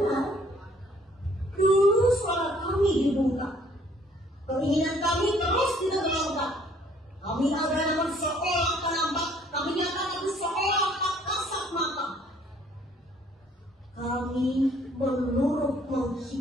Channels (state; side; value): normal; both; correlation 0.61